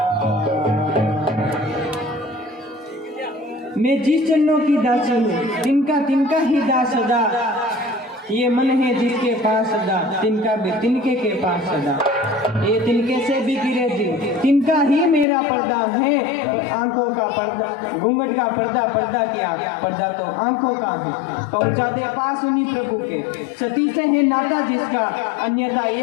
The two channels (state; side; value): drops out; right; at 15.2 s